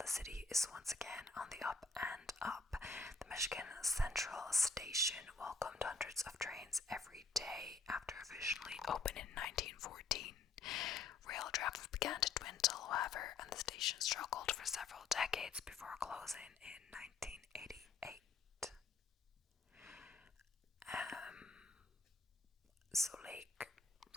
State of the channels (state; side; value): quieter; right; 4.2 dB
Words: city is once again on the up and up. The Michigan Central Station welcomed hundreds of trains every day after officially opened in 1914. Rail traffic began to dwindle, however, and the station struggled for several decades before closing in 1988. So Lake